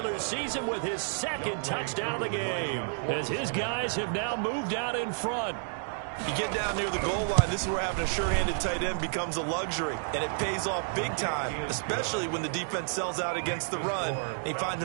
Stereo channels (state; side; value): silent; left; digital silence